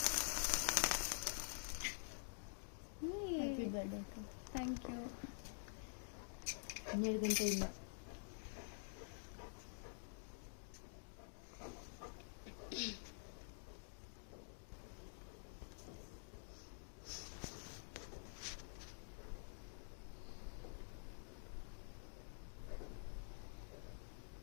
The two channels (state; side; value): silent; right; digital silence